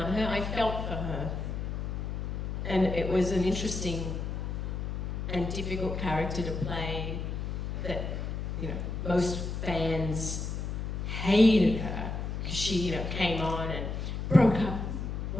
her. I felt for her. And it was an interesting and difficult character to play that, you know, most fans hated her because she, came on and broke up,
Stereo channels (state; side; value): noise; left; hum, 3 dB below the sound